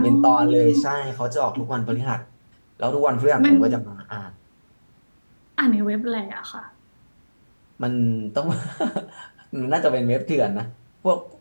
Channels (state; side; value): inverted; both; correlation -1.00